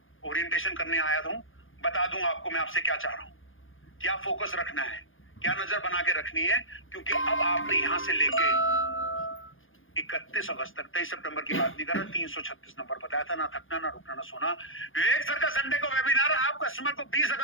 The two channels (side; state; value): right; late; 0.59 ms